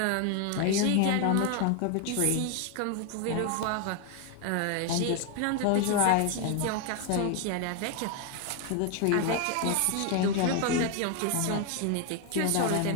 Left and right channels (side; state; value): both; different; correlation 0.01